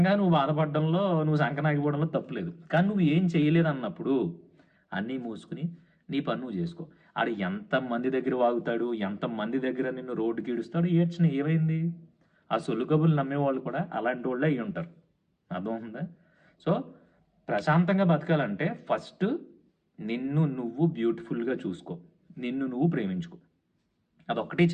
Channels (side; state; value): both; identical; correlation 1.00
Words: నువ్వు బాధపడడంలో, నువ్వు సంకనాగిపోవడంలో తప్పులేదు. కానీ నువ్వు ఏం చేయలేదు అన్నప్పుడు అన్నీ మూసుకుని నీ పని నువ్వు చేసుకో. ఆడు ఎంతమంది దగ్గర వాగుతాడు, ఎంతమంది దగ్గర నిన్ను రోడ్డుకి ఈడుస్తాడు, ఏడ్చిన ఏమైంది? ఆ సొల్లు కబుర్లు నమ్మేవాళ్ళు కూడా అలాంటి వాళ్ళే అయ్యి ఉంటారు. అర్థమవుతుందా? సో ప్రశాంతంగా బతకాలంటే ఫస్ట్ నిన్ను నువ్వు బ్యూటిఫుల్గా చూసుకో, నిన్ను నువ్వు ప్రేమించుకో. అదొక్కటే